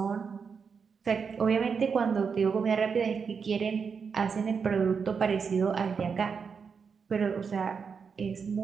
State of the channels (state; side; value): quieter; left; 5.9 dB